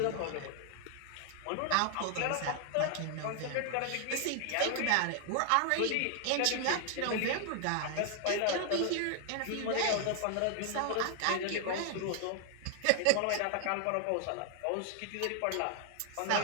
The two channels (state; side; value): different; both; correlation 0.00